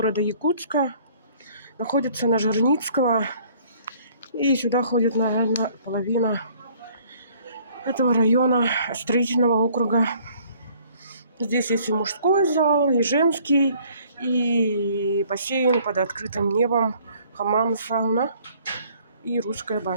Якутска. Находится на Жирницкого. И сюда ходит, наверное, половина этого района строительного округа. Здесь есть и мужской зал, и женский, и бассейн под открытым небом, хамам, сауна и русская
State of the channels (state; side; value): inverted; both; correlation -0.58